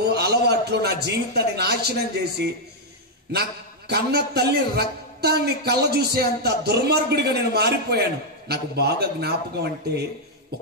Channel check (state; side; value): normal; both; correlation -0.02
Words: అలవాట్లు నా జీవితాన్ని నాశనం చేసి నా కన్న తల్లి రక్తాన్ని కళ్ళ చూసే అంత దుర్మార్గుడిగా నేను మారిపోయాను. నాకు బాగా జ్ఞాపకం అంటే